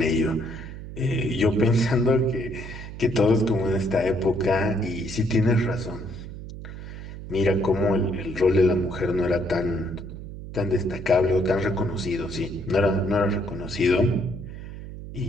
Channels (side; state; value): right; noise; hum, 11 dB below the sound